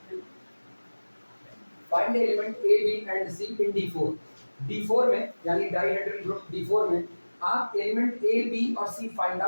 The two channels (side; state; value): both; inverted; correlation -1.00